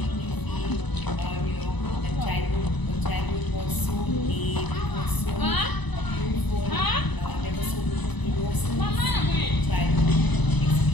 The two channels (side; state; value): right; late; 1.0 ms